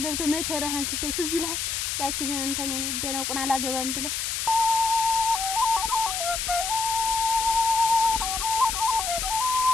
ገብተህ መከራህን ስታይ ትዝ ይልሃል። ያችን እንትን ይደነቁን አላገባም ብለህ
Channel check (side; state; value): left; noise; hiss, 1 dB below the sound